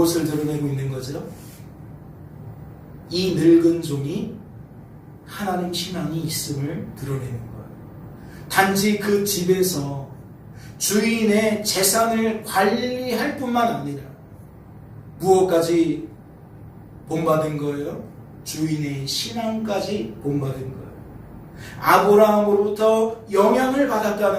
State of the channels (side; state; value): both; identical; correlation 1.00